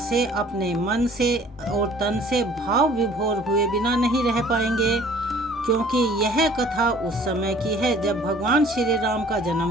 अपने मन से और तन से भाव विभोर हुए बिना नहीं रह पाएंगे, क्योंकि यह कथा उस समय की है जब भगवान श्री राम का जन्म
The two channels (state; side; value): normal; both; correlation 0.52